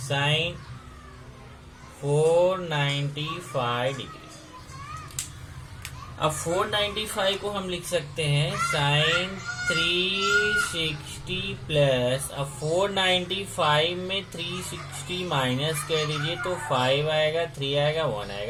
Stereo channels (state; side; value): identical; both; correlation 1.00